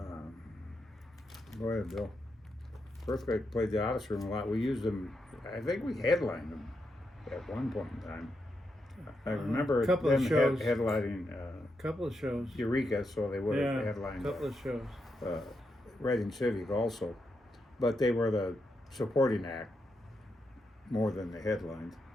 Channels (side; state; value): both; normal; correlation 0.84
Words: Go ahead, Bill. Earthquake played the Odyssey Room a lot. We used them. I think we headlined them at one point in time. I remember them headlining couple of shows. Eureka, so they would have headlined. Couple of shows. Reading Civic also, but they were the supporting act more than the headline.